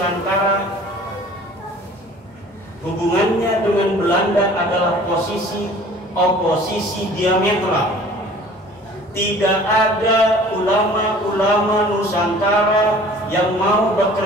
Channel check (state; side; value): normal; both; correlation 0.48